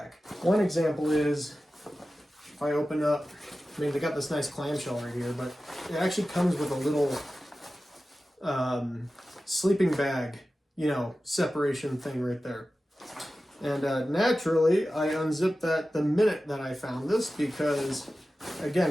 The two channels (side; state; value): both; normal; correlation 0.94